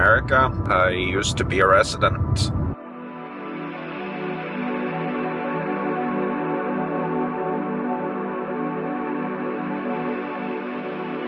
I used to be a resident.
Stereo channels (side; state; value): both; identical; correlation 1.00